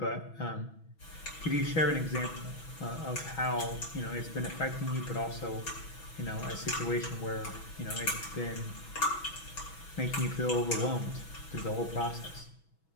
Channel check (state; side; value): late; right; 6.2 ms